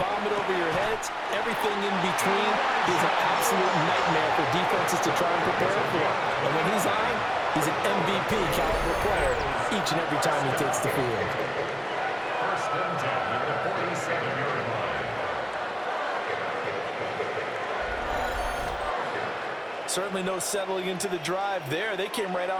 it over your heads. Everything in between is an absolute nightmare for defenses to try and prepare for. And when he's on, he's an MVP caliber player each and every time he takes the field. 1st and 10 at the 47-yard line. Certainly no settling into the drive there. They came right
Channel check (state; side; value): identical; both; correlation 1.00